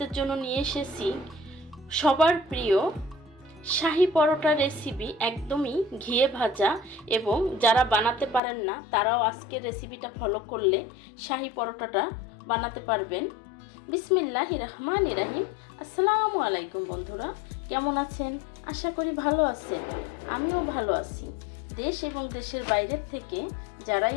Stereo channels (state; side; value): drops out; right; at 8.4 s